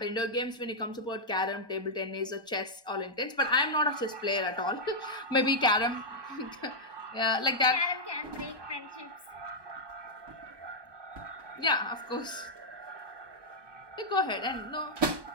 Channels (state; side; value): late; left; 1.2 ms